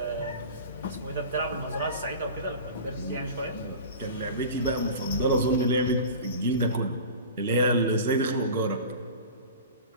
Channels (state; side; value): inverted; both; correlation -0.35